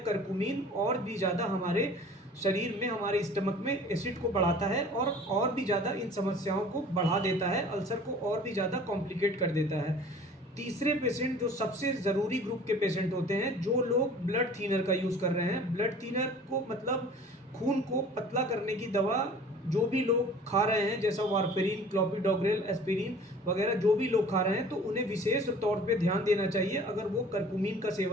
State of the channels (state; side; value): normal; both; correlation 0.46